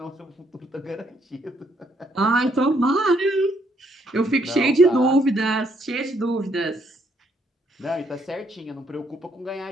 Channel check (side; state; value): both; normal; correlation 0.71